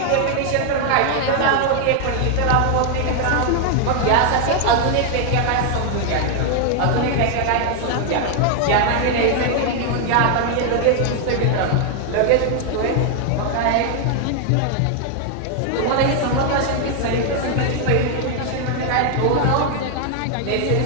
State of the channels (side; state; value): both; different; correlation 0.00